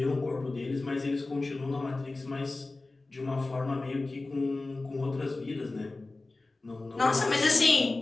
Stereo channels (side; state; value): right; quieter; 3.2 dB